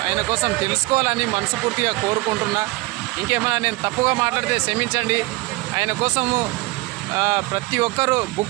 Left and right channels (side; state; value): left; quieter; 22.4 dB